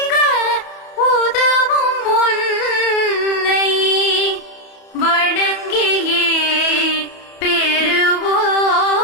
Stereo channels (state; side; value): late; right; 31 ms